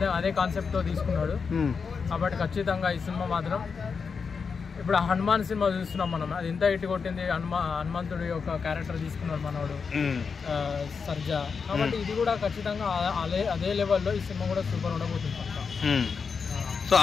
అదే కాన్సెప్ట్ తో తీసుకున్నాడు. కాబట్టి ఖచ్చితంగా ఈ సినిమా మాత్రం ఇప్పుడు హనుమాన్ సినిమా చూస్తున్నాం మనం, అది ఎంత హిట్ కొట్టింది. హనుమంతుడి యొక్క క్యారెక్టర్ తీసుకున్నాడు మనోడు సర్జా. కాబట్టి ఇది కూడా ఖచ్చితంగా అదే లెవెల్లో ఈ సినిమా కూడా సూపర్ ఉండబోతుంది పక్కా. సో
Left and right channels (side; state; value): right; quieter; 5.6 dB